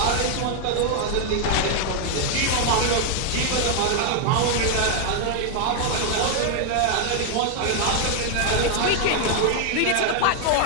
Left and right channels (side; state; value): both; different; correlation 0.00